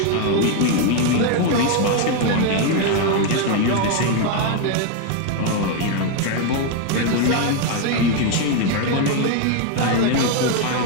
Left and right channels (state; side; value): different; both; correlation 0.01